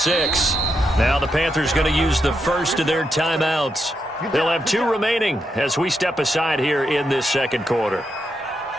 Now the Panthers going to use the first of their timeouts. They'll have 2 remaining as we step aside here in this second quarter.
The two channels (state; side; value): normal; both; correlation 0.83